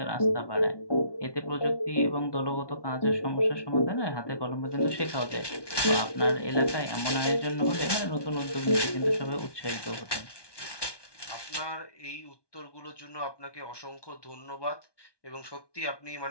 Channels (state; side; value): late; right; 1.2 ms